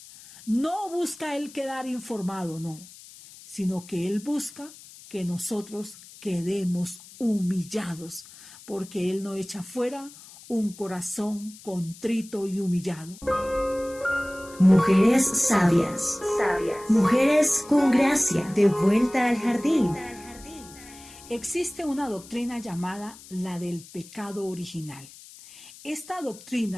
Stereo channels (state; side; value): noise; left; hiss, 19 dB below the sound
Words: No busca Él quedar informado, no, sino que Él busca que nosotros quedemos humillados, porque Él no echa fuera un corazón contrito y humillado. Mujeres sabias, mujeres con gracia, de vuelta al jardín. Existe una doctrina llamada la del pecado original. Esta